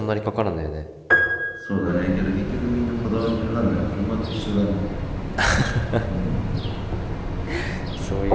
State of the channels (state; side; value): identical; both; correlation 1.00